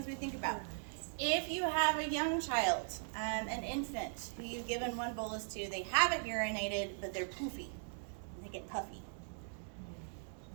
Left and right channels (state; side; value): silent; left; digital silence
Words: we think about. If you have a young child, an infant, who you've given 1 bolus to, they haven't urinated, but they're poofy, and they get puffy.